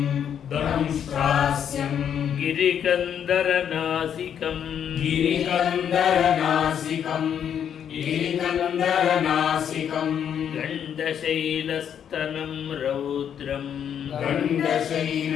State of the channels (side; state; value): right; quieter; 8.7 dB